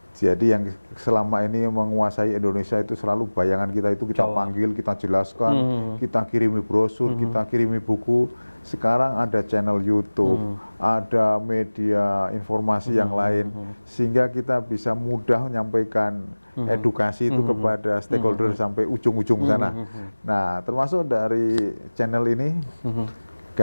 Jadi yang selama ini menguasai Indonesia itu selalu bayangan kita itu kita panggil, kita jelaskan, kita kirimi brosur, kita kirimi buku. Sekarang ada channel YouTube, ada media informasi yang lain, sehingga kita bisa mudah menyampaikan edukasi itu kepada stakeholder sampai ujung-ujung sana. Nah, termasuk dari channel ini,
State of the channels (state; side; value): inverted; both; correlation -1.00